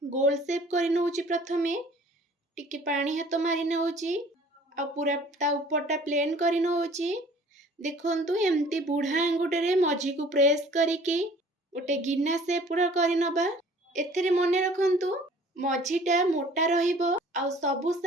गोल शेप करि नउची। प्रथमे टिके पानी हाथ मारि नउची आ पूरा ता ऊपरटा प्लेन करि नउची। देखंतु एमती बुढ़ा आंगुटे रे मझी को प्रेस करिकी गोटे गिना शेप पूरा करि नबा। एथिरे मने रखंतु मझीटा मोटा रहिबो आ सबु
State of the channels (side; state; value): both; normal; correlation 0.52